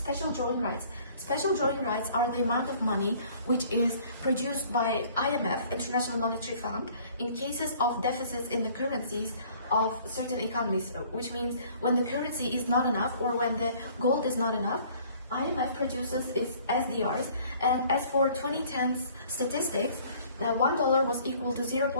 drawing rights. Special drawing rights are the amount of money which is produced by IMF, International Monetary Fund, in cases of deficits in the currencies of certain economies, which means when the currency is not enough or when the gold is not enough, IMF produces its SDRs. And as for 2010's statistics, $1 was equal to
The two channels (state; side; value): inverted; both; correlation -0.55